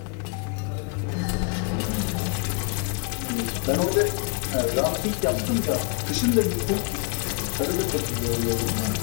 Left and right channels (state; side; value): quieter; right; 35.8 dB